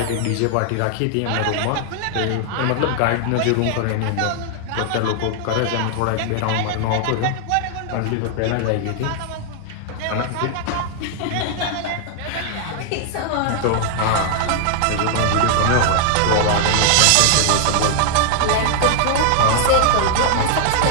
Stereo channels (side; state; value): both; different; correlation 0.00